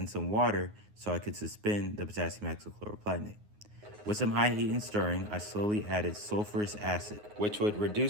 some water so I could suspend the potassium hexachloroplatinate. With some high heat and stirring, I slowly added sulfurous acid, which would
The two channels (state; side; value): late; left; 9.5 ms